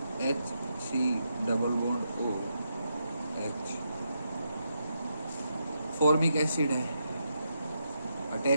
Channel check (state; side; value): inverted; both; correlation -0.83